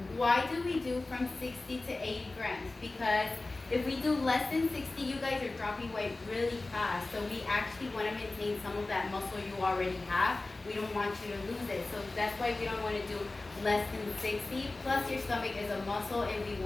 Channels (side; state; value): right; quieter; 3.2 dB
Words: Why do we do from 60 to 80 grams? Because if we do less than 60, you guys are dropping weight really fast. So we actually want to maintain some of that muscle you already have. We don't want you to lose it. So that's why we don't want to do less than 60. Plus your stomach is a muscle and we